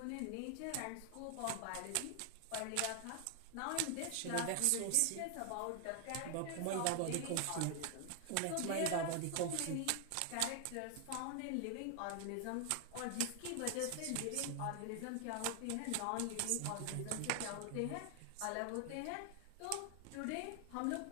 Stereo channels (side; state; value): both; different; correlation 0.00